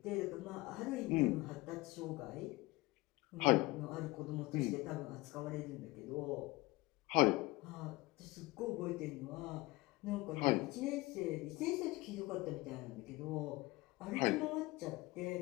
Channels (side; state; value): right; quieter; 21.1 dB